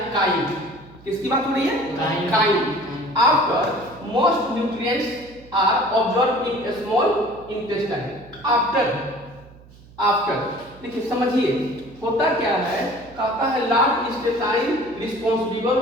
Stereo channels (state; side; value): noise; right; hum, 23 dB below the sound